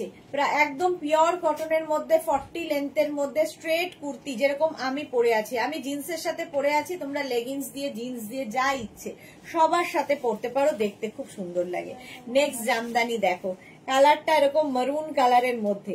একদম পিওর কটনের মধ্যে 40 লেন্থের মধ্যে স্ট্রেট কুর্তি, যেরকম আমি পরে আছি। আমি জিন্সের সাথে পরে আছি, তোমরা লেগিংস দিয়ে জিন্স দিয়ে যা ইচ্ছে সবার সাথে পরতে পারো, দেখতে খুব সুন্দর লাগে। নেক্সট জামদানি দেখো, কালারটা এরকম মারুন কালারের মধ্যে।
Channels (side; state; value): both; identical; correlation 1.00